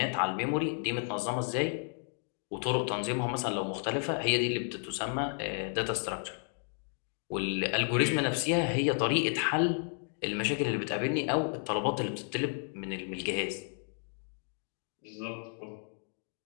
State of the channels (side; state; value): right; silent; 56 dB below the other